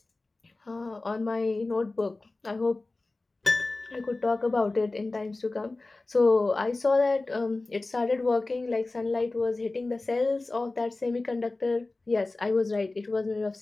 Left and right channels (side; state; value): right; quieter; 3.2 dB